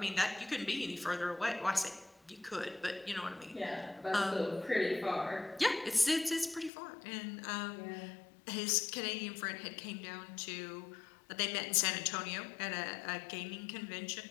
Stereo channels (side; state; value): right; drops out; at 6.7 s